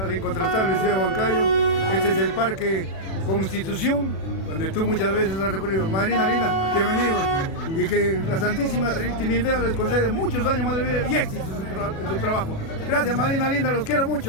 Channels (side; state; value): right; late; 36 ms